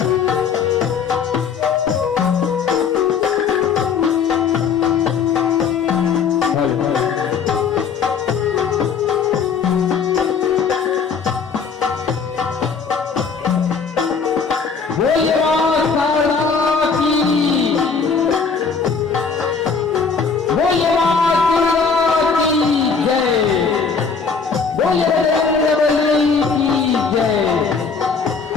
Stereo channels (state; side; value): quieter; right; 5.6 dB